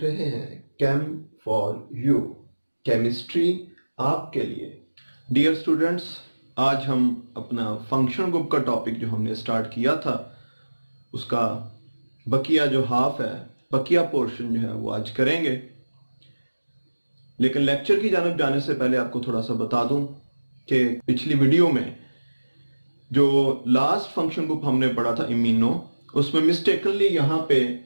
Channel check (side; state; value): both; inverted; correlation -1.00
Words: रहे हैं केम फॉर यू, केमिस्ट्री आपके लिए। डियर स्टूडेंट्स, आज हम अपना फंक्शन ग्रुप का टॉपिक जो हमने स्टार्ट किया था उसका बकिया जो हाफ है, बकिया पोर्शन जो है वो आज करेंगे। लेकिन लेक्चर की जानिब जाने से पहले आपको थोड़ा सा बता दूं कि पिछली वीडियो में जो लास्ट फंक्शन ग्रुप हमने पढ़ा था इम्यूनो, उसमें मिस्टेकनली यहां पे